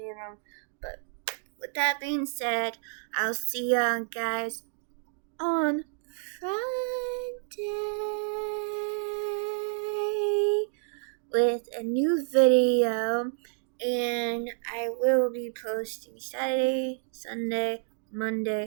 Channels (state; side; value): silent; left; 58 dB below the other